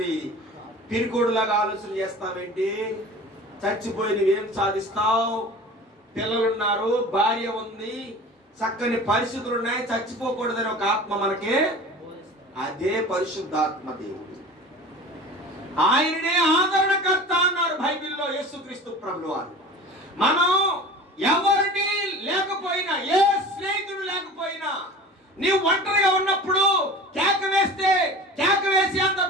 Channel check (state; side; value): normal; both; correlation 0.38